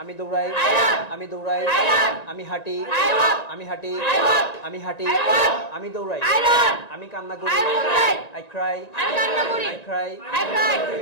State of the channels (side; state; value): right; late; 1.9 ms